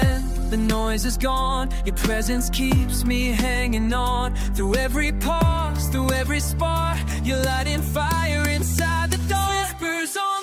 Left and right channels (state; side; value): identical; both; correlation 1.00